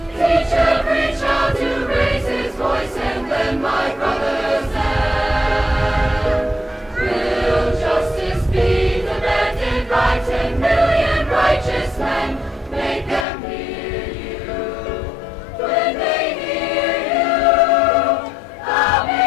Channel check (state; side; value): drops out; right; at 13.2 s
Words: Teach every child to raise his voice and lend my brother's hand. Will justice be demanded by 10 million righteous men? Make them hear you. When they hear you, how